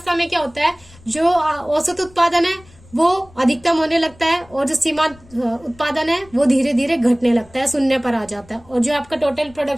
में क्या होता है, जो औसत उत्पादन है वो अधिकतम होने लगता है, और जो सीमांत उत्पादन है वो धीरे धीरे घटने लगता है, शून्य पर आ जाता है, और जो आपका टोटल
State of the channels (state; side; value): noise; left; rumble, 25 dB below the sound